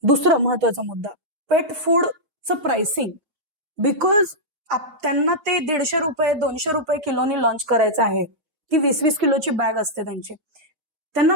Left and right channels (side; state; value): left; late; 6.3 ms